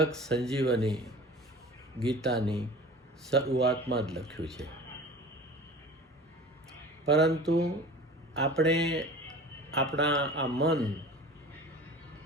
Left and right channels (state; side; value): normal; both; correlation 0.39